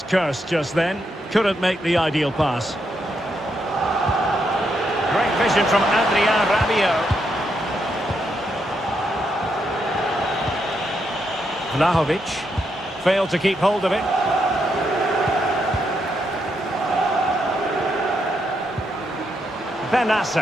curse just then. Couldn't make the ideal pass. Great vision from Adrien Rabiot. Vlahovic failed to keep hold of it.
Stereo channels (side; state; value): both; normal; correlation 0.80